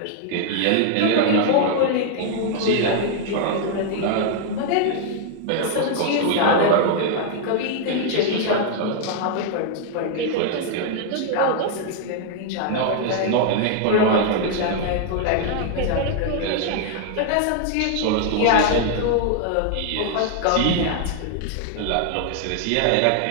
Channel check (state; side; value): different; both; correlation 0.00